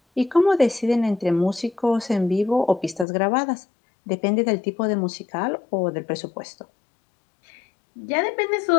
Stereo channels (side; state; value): right; drops out; at 3.1 s